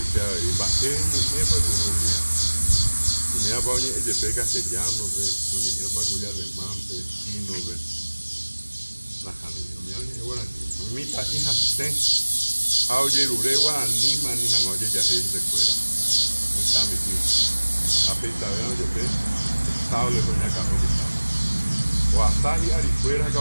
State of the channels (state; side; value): inverted; both; correlation -1.00